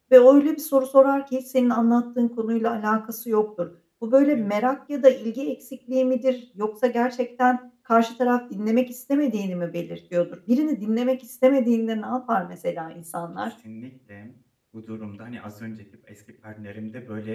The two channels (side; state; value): both; identical; correlation 1.00